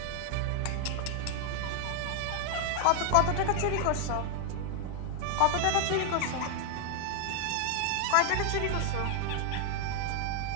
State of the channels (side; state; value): both; different; correlation 0.00